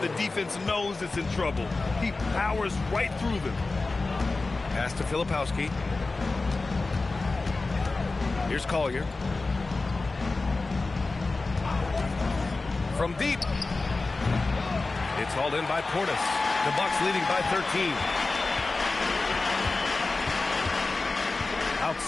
the defense knows it's in trouble. He powers right through them. Pass to Filipowski. Here's Collier. From deep. It's hauled in by Portis. The Bucks leading by 13.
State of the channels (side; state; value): right; quieter; 3.5 dB